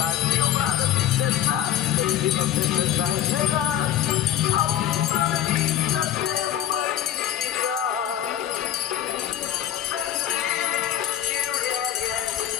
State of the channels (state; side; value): quieter; right; 11.5 dB